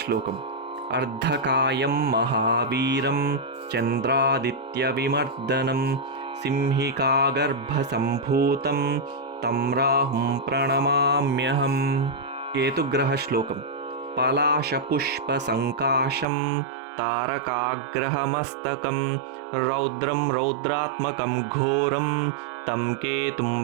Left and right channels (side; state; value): left; drops out; at 16.2 s